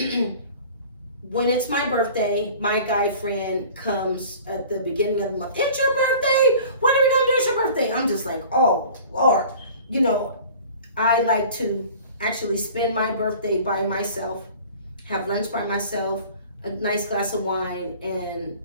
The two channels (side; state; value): both; inverted; correlation -0.44